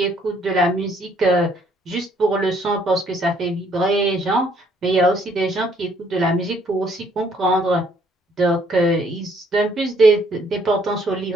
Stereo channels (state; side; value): normal; both; correlation 0.65